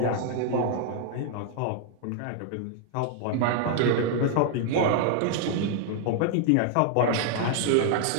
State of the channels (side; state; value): both; different; correlation 0.00